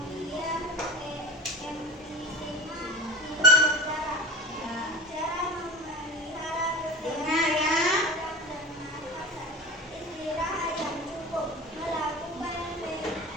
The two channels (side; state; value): both; normal; correlation 0.31